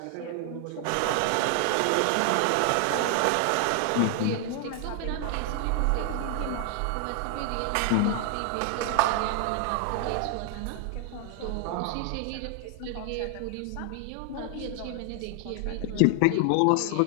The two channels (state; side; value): different; both; correlation 0.00